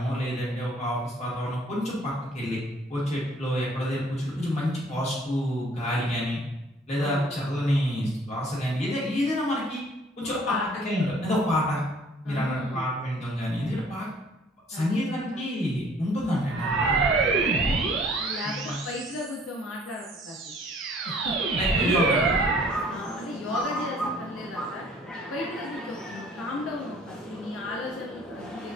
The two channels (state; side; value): normal; both; correlation 0.57